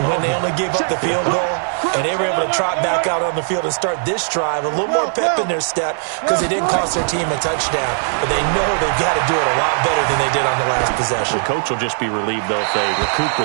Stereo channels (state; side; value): silent; left; 66 dB below the other